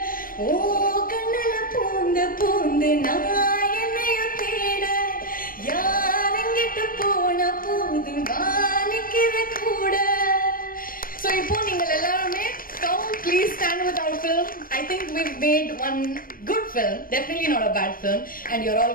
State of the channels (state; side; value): late; right; 0.41 ms